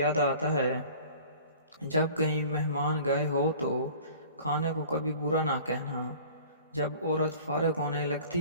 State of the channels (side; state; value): both; inverted; correlation -0.46